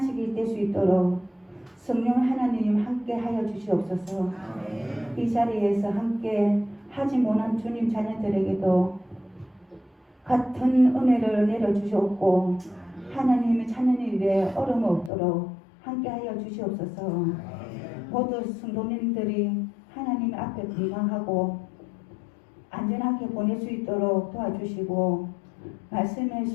될 수 있도록 성령 하나님 함께 하여 주시옵소서. 이 자리에서 함께 하지 못한 주님 자녀들에게도 같은 은혜를 내려주시옵고 하나님의 찾는 일에 어려움 없도록 함께 하여 주시옵소서. 모두 성도님들이 하나님 앞에 건강하고 안전하게 보낼 수 있도록 도와주시고 말씀에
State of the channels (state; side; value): drops out; right; at 15.1 s